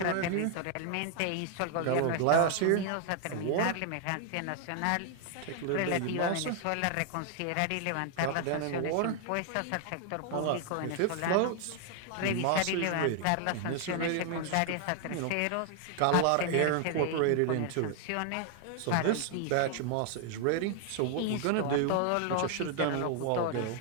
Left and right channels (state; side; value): different; both; correlation 0.00